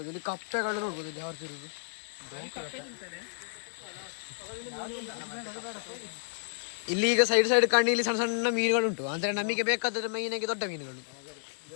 ಇಲ್ಲಿ ಕಪ್ಪೆಗಳು ನೋಡ್ಬೋದು ಇಲ್ಲಿ ಯಾರು ತಿರುದು. ಇಲ್ಲಿ ಈಗ ಸೈಡ್ ಸೈಡ್ ಕಣ್ಣಿಲಿ ಸಣ್ಣ ಸಣ್ಣ ಮೀನುಗಳುಂಟು, ಅಂದರೆ ನಮಗೆ ಬೇಕಾದರೆ ಮೈನಾಗಿ ದೊಡ್ಡ ಮೀನುಗಳು.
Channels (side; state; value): right; silent; digital silence